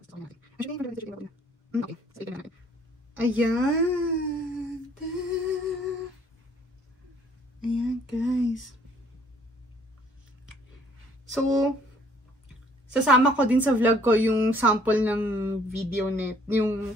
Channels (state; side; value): normal; both; correlation 0.60